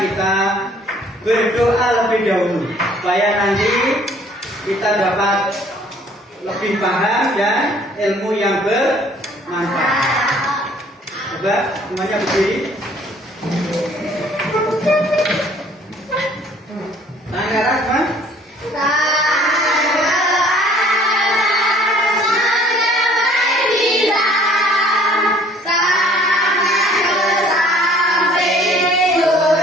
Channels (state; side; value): normal; both; correlation 0.56